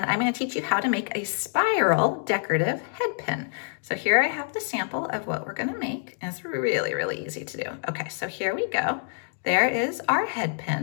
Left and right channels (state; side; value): silent; right; digital silence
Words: I'm going to teach you how to make a spiral decorative head pin. So here I have the sample of what we're going to make, and it's really easy to do. Okay, so here we go. There is our head